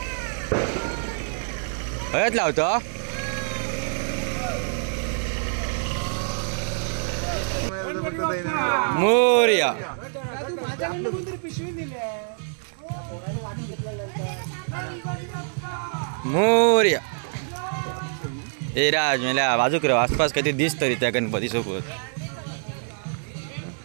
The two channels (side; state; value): left; silent; digital silence